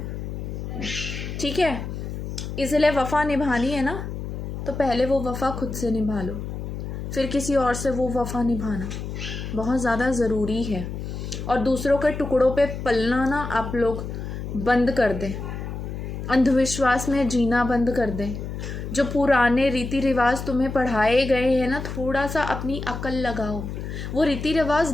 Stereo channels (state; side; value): noise; left; hum, 6 dB below the sound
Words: ठीक है? इसलिए वफ़ा निभानी है ना, तो पहले वो वफ़ा खुद से निभा लो, फिर किसी और से वो वफ़ा निभाना बहुत ज़्यादा ज़रूरी है। और दूसरों के टुकड़ों पे पलना ना आप लोग बंद कर दें, अंधविश्वास में जीना बंद कर दें। जो पुराने रीति रिवाज तुम्हें पढ़ाए गए हैं ना, थोड़ा सा अपनी अकल लगाओ। वो रीति रिवाज